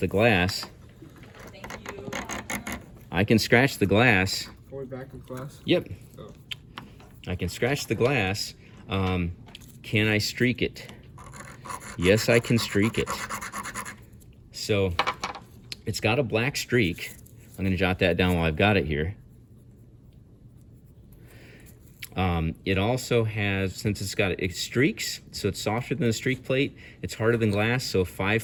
glass. I can scratch the glass. Are we back in class? Yep. Oh. I can scratch the glass. Can I streak it? Yes, I can streak it. So it's got a black streak. I'm going to jot that down while I've got it here. It also has, since it streaks, so it's softer than a streak plate, it's harder than glass, so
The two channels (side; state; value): both; identical; correlation 1.00